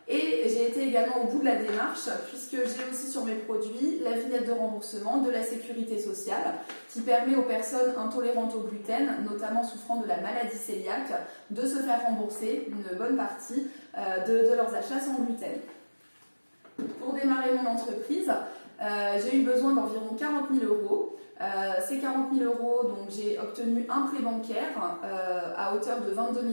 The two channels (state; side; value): inverted; both; correlation -1.00